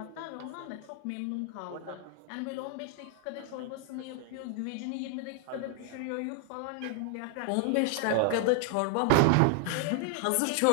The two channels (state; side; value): different; both; correlation 0.00